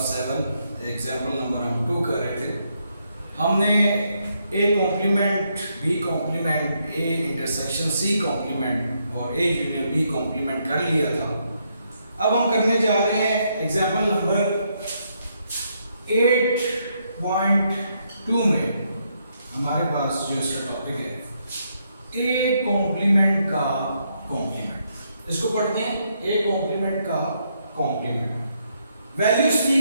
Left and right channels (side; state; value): both; inverted; correlation -0.76